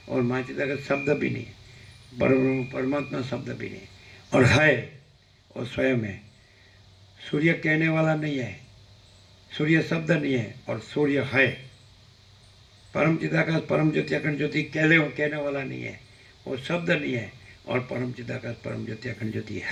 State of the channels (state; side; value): identical; both; correlation 1.00